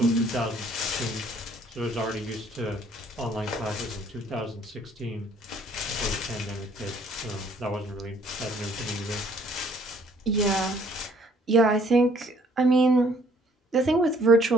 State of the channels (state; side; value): normal; both; correlation 0.61